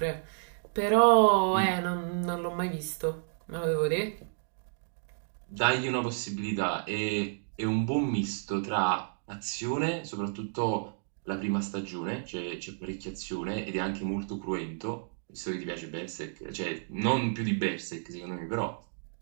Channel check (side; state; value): left; silent; digital silence